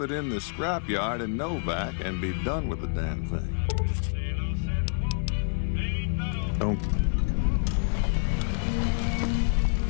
in the scrapyard in Novak and be done with the damn thing. Don't.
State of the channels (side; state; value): right; silent; digital silence